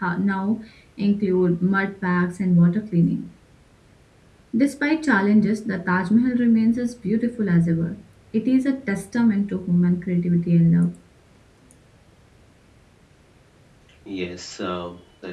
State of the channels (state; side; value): identical; both; correlation 1.00